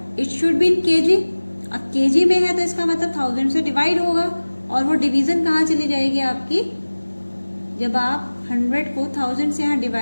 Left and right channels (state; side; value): inverted; both; correlation -1.00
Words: it should be in kg. अब केजी में है तो इसका मतलब 1000 से डिवाइड होगा, और वो डिवीजन कहाँ चली जाएगी आपकी, जब आप 100 को 1000 से यहाँ